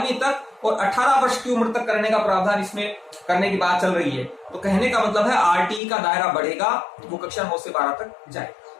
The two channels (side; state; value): right; drops out; at 5.8 s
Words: तक और 18 वर्ष की उम्र तक करने का प्रावधान इसमें करने की बात चल रही है। तो कहने का मतलब है आरटीई का दायरा बढ़ेगा, वो कक्षा 9 से 12 तक